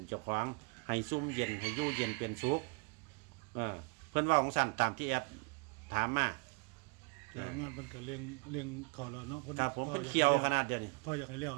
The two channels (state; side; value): quieter; left; 32.6 dB